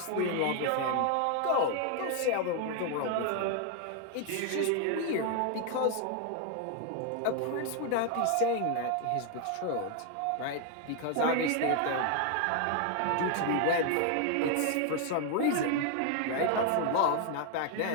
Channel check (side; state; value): both; different; correlation 0.00